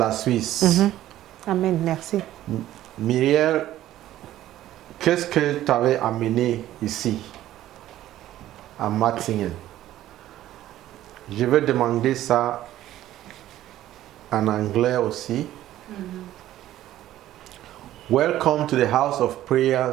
Suisse. Amen, merci. Myriel, qu'est-ce que tu avais amené ici, à Matzingen? Je vais demander ça en anglais aussi. Welcome to the House of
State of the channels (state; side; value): quieter; left; 13.6 dB